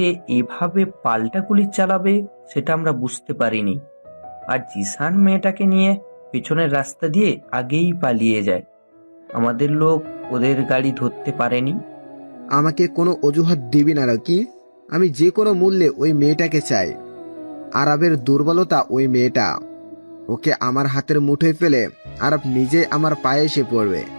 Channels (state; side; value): inverted; both; correlation -1.00